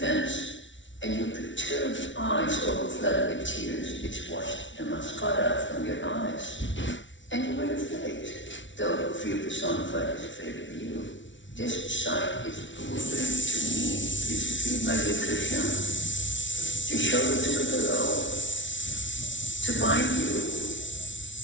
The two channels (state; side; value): late; right; 0.55 ms